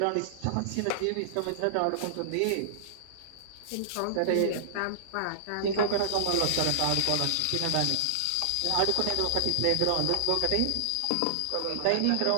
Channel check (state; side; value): different; both; correlation -0.01